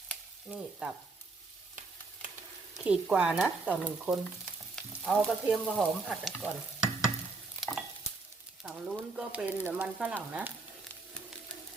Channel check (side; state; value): left; quieter; 3.8 dB